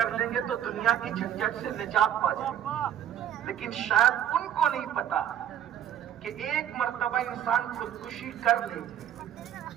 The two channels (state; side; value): quieter; left; 10.4 dB